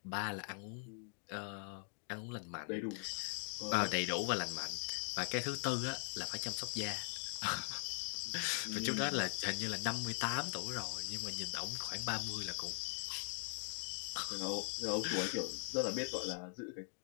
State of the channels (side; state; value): right; silent; digital silence